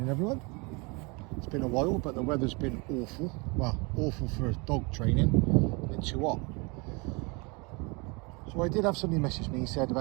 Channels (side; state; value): left; quieter; 29.3 dB